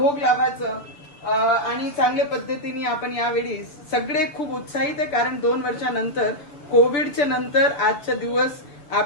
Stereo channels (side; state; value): right; late; 6.7 ms